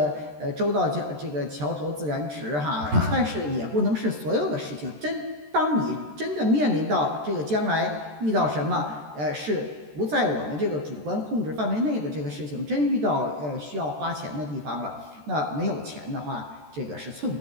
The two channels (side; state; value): left; late; 13 ms